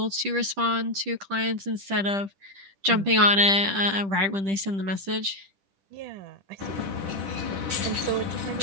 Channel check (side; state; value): left; late; 10 ms